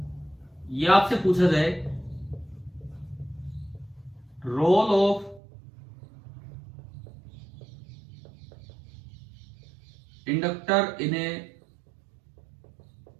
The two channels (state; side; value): drops out; left; at 5.4 s